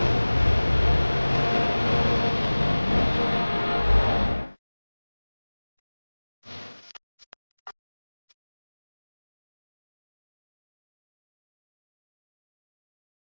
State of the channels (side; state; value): both; inverted; correlation -1.00